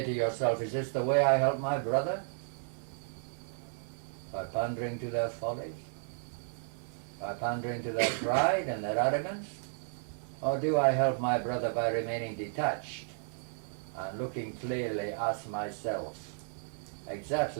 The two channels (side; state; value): left; silent; digital silence